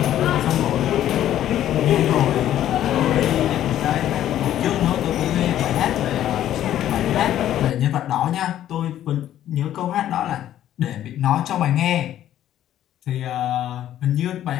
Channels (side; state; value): right; quieter; 11.9 dB